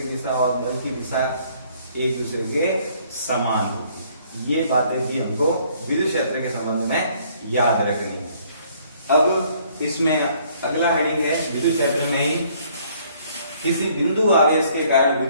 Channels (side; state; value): both; inverted; correlation -0.62